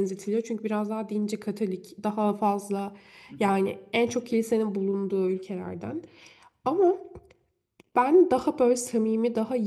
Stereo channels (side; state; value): both; identical; correlation 1.00